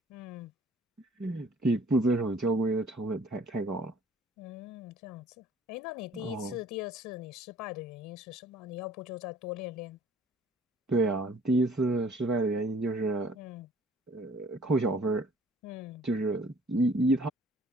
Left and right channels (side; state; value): both; normal; correlation 0.55